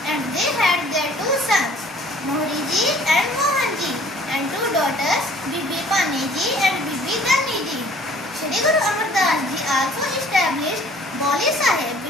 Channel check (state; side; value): normal; both; correlation 0.54